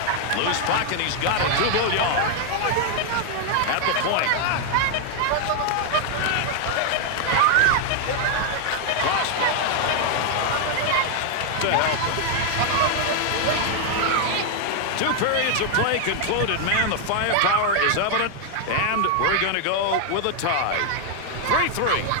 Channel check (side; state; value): both; different; correlation 0.00